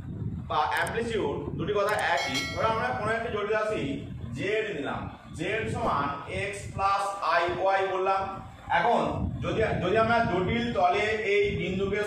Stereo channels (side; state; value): both; identical; correlation 1.00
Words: বা অ্যামপ্লিটিউড দুটি কথা একই। ধরো আমরা কোনো একটা জটিল রাশি জেড নিলাম, জেড সমান এক্স প্লাস আই ওয়াই বললাম। এখন যদি আমরা জটিল তলে এই বিন্দুকে